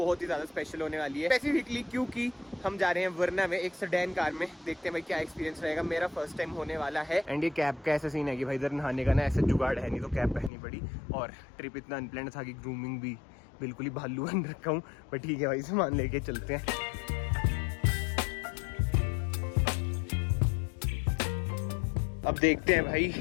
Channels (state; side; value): drops out; right; at 10.5 s